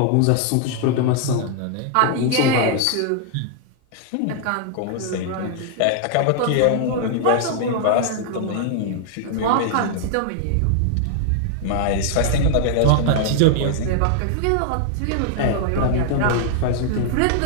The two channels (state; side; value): different; both; correlation 0.00